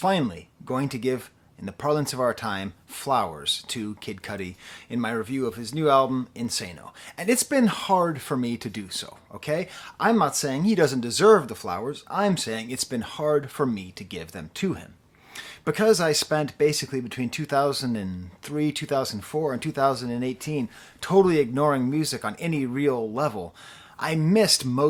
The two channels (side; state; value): both; identical; correlation 1.00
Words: going to give, in the parlance of our time, flowers to Kid Cudi in my review of his new album, Insano. And it's been hard for me to do so, okay? I'm not saying he doesn't deserve the flowers, I'm saying it's been hard for me to give them to him. Because I spent basically between 2003, 2004, and 2018 totally ignoring music on any real level, I missed